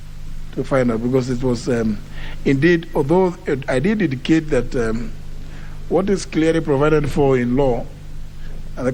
to find out, because it was indeed, although I did indicate that what is clearly provided for in law, and the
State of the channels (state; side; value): identical; both; correlation 1.00